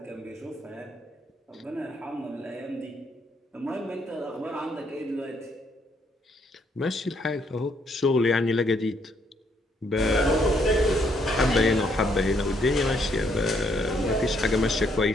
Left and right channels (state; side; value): normal; both; correlation 0.71